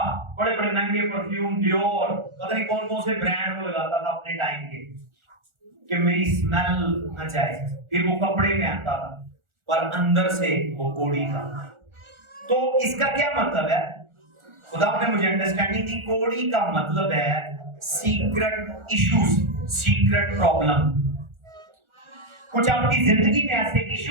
बड़े बड़े महंगे परफ्यूम, डियोर, पता नहीं कौन कौन से ब्रांड वो लगाता था अपने टाइम के कि मेरी स्मेल न जाए। फिर वो कपड़े पहनता था पर अंदर से वो कोड़ी था। तो इसका क्या मतलब है? खुदा ने मुझे अंडरस्टैंडिंग दी। कोड़ी का मतलब है सीक्रेट इश्यूज, सीक्रेट प्रॉब्लम। कुछ आपकी जिंदगी में ऐसे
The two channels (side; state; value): left; late; 1.4 ms